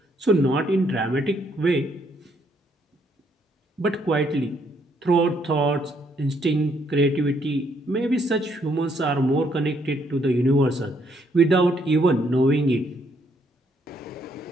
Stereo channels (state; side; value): normal; both; correlation 0.71